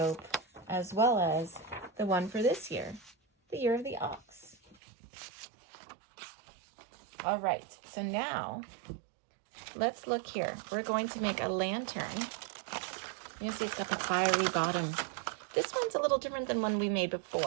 as well as the one for this year, the year of the ox. All right, so now let's look here. We're going to make a lantern. You see it's got the fiery bottom. This one's a little different than one we made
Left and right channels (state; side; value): drops out; left; at 4.8 s